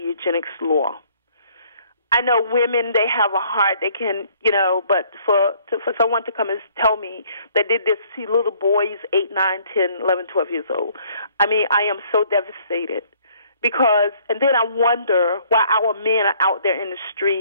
law. I know women, they have a heart, they can, but for someone to come and tell me that they did see little boys 8, 9, 10, 11, 12 years old, I mean, I am so devastated and then I wonder why our men are out there in the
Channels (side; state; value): both; inverted; correlation -0.61